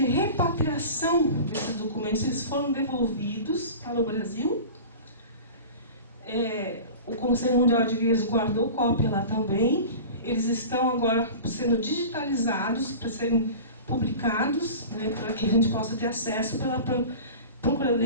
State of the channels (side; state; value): both; inverted; correlation -0.35